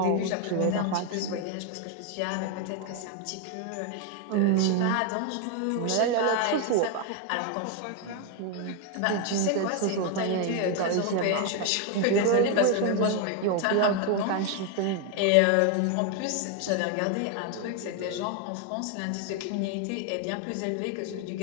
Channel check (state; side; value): different; both; correlation 0.01